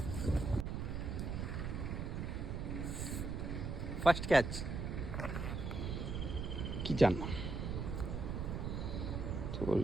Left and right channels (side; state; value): right; noise; rumble, 2 dB below the sound